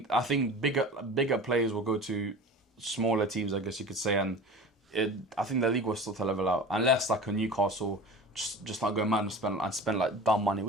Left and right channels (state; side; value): normal; both; correlation 0.37